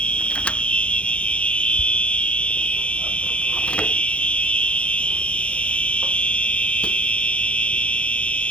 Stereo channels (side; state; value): right; late; 0.061 ms